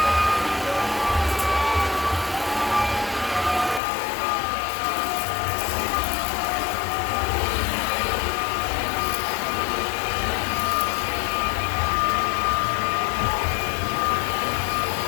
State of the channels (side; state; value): right; drops out; at 3.8 s